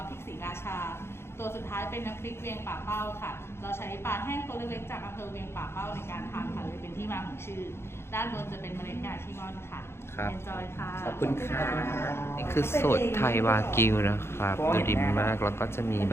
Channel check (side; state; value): right; late; 0.12 ms